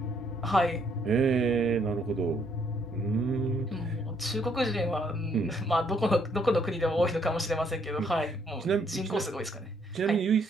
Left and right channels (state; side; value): normal; both; correlation 0.69